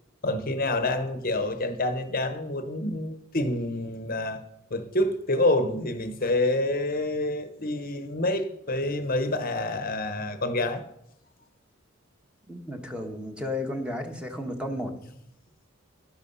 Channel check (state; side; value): normal; both; correlation 0.12